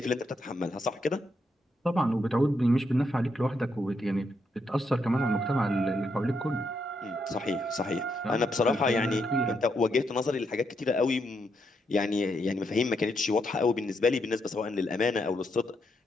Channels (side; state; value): both; normal; correlation 0.79